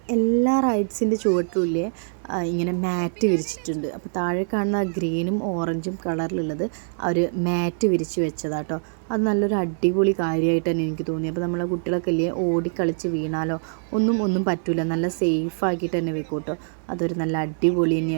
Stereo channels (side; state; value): left; silent; digital silence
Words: എല്ലാ റൈഡ്സിൻ്റെ ചുവട്ടിലുമില്ലേ ഇങ്ങനെ മാറ്റ് വിരിച്ചിട്ടുണ്ട്. അപ്പോൾ താഴെ കാണുന്ന ഗ്രീനും ഓറഞ്ചും കളറിലുള്ളത് അവർ മാറ്റ് വിരിച്ച് വെച്ചതാട്ടോ. അത് നല്ലൊരു അടിപൊളി കാര്യമായിട്ട് തന്നെ എനിക്ക് തോന്നി. അപ്പോൾ നമ്മളെ കുട്ടികളൊക്കെ ഇല്ലേ ഓടിക്കളിച്ച് വീണാലോ ഒന്നും പറ്റില്ല, നല്ല സേഫ് ആക്കിയിട്ട് തന്നെ വെക്കും കേട്ടോ. അതൊരു നല്ല അടിപൊളി